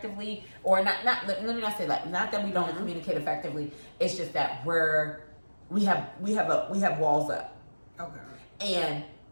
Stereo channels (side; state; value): both; inverted; correlation -1.00